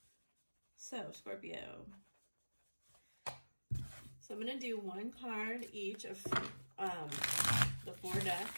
So, Scorpio. So I'm going to do one card each of the 4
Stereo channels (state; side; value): inverted; both; correlation -1.00